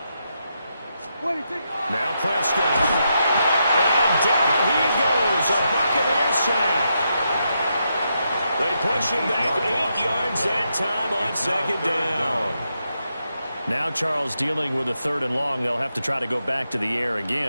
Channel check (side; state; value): both; inverted; correlation -0.83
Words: Now Prescott. And down he goes. A Buccaneer sack. They push him back 8 yards that time on second down. Now Charles dealing with a 3rd and long. They'll have to try to go back to the air